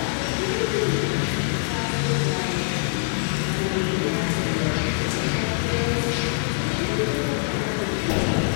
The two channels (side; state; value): right; silent; 57 dB below the other